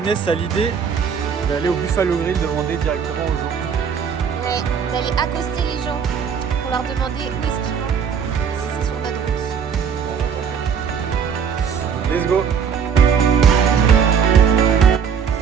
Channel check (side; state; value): left; quieter; 6.9 dB